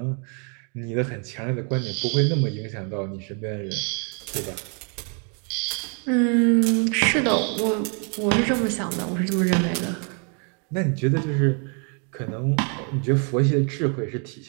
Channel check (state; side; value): quieter; left; 38.4 dB